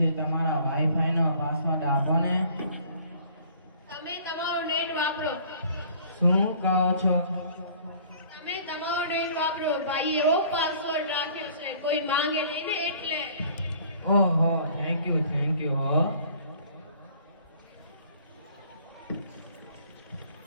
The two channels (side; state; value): both; inverted; correlation -0.54